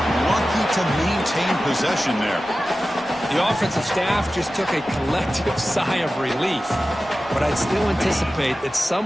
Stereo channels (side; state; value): both; normal; correlation 0.95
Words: Lucky to maintain possession there. The offensive staff just took a collective sigh of relief. But I'd still anticipate that